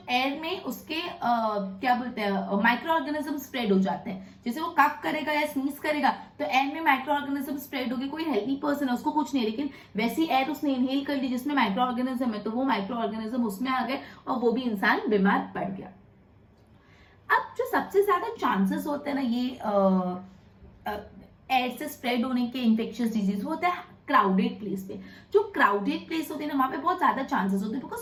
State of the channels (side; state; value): both; identical; correlation 1.00